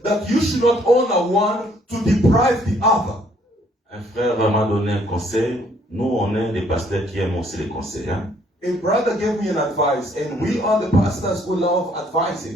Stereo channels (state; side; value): normal; both; correlation 0.64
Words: you should not honor one to deprive the other. Un frère m'a donné un conseil. Nous, on est des pasteurs qui aiment aussi les conseils. Hein? A brother gave me an advice, and we are the pastors who love